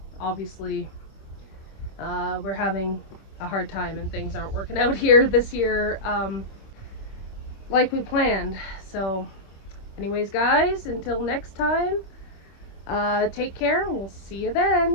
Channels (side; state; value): right; late; 26 ms